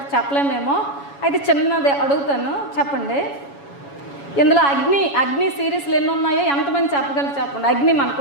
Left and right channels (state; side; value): late; right; 7.1 ms